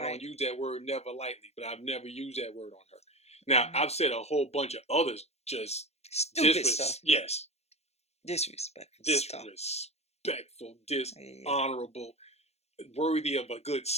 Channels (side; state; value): right; late; 0.31 ms